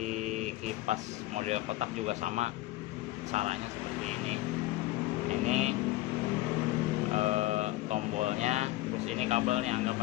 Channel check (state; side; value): quieter; right; 17.7 dB